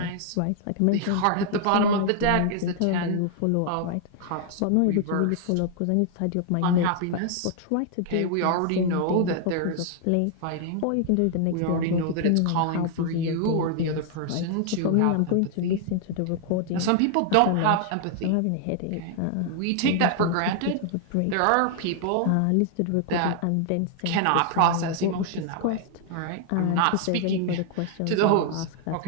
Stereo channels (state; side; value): different; both; correlation 0.00